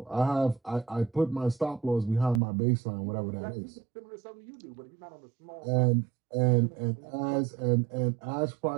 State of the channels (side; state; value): left; drops out; at 2.4 s